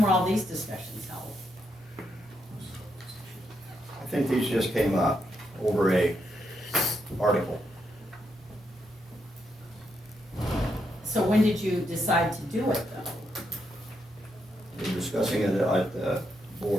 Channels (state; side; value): normal; both; correlation 0.80